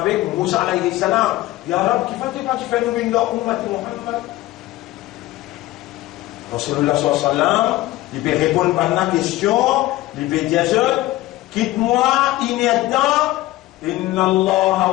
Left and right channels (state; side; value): quieter; right; 17.1 dB